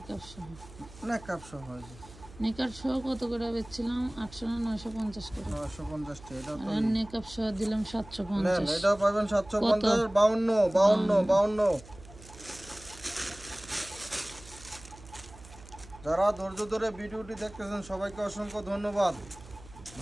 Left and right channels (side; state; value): right; noise; hum, 19 dB below the sound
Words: সহ, নেকাব সহ নেকাব সহ কত করে বেচছিলাম? 800 না 950 করে। 950 টা। এটা তো আর নেকাব সহ দিলাম নেন, 750। এটাও পাবেন 750 52 52 52। যারা ধৈর্য ধরে ভিডিওটি দেখতেছেন সবাইকে অসংখ্য ধন্যবাদ।